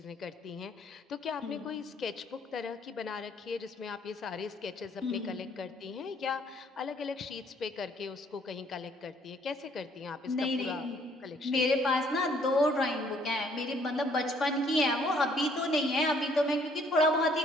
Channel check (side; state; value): both; normal; correlation 0.63